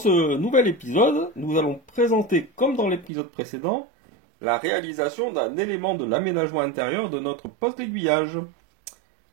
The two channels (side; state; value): left; drops out; at 3.1 s